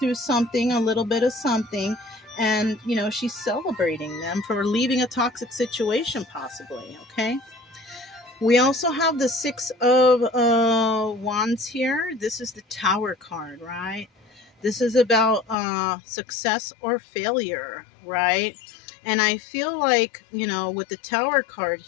something, a little bit of something, and she's celebrating them for leaving a toxic situation, possibly. Okay, we also have the Six of Wands here. This is the Tower card, right? This is about success or failure, right? And I feel like, with the Tower card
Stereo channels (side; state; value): right; drops out; at 15.6 s